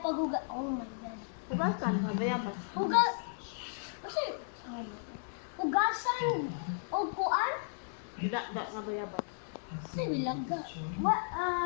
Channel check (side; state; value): right; silent; digital silence